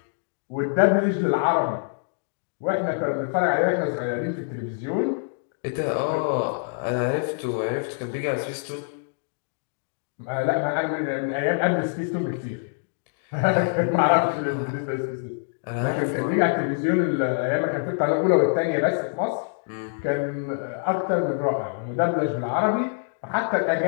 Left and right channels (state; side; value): silent; right; digital silence